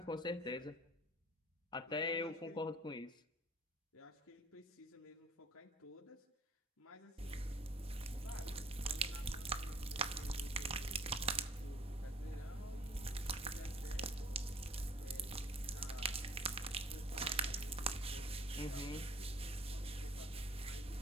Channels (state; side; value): normal; both; correlation 0.51